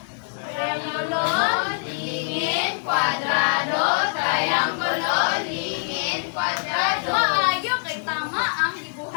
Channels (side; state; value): right; silent; digital silence